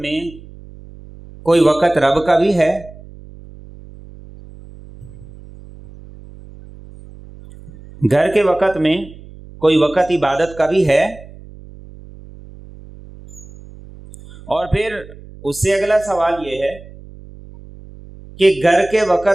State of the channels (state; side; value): noise; right; hum, 19 dB below the sound